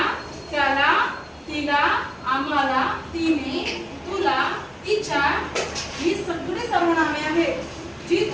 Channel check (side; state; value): both; identical; correlation 1.00